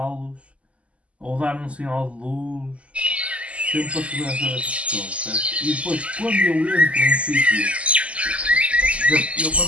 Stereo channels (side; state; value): left; late; 0.062 ms